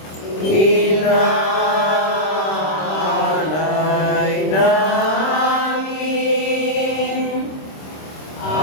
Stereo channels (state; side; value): late; right; 26 ms